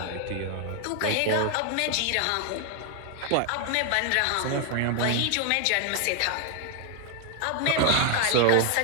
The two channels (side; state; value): both; different; correlation 0.01